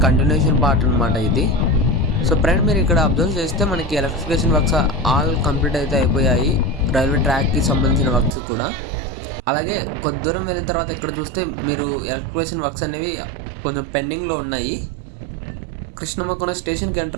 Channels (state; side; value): drops out; left; at 8.3 s